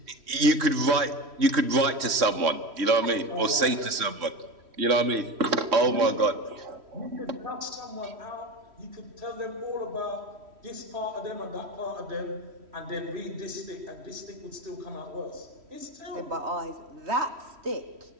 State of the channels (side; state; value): left; late; 3.1 ms